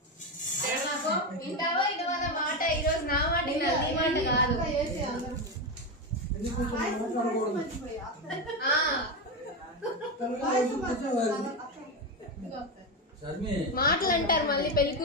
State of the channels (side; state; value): both; normal; correlation 0.13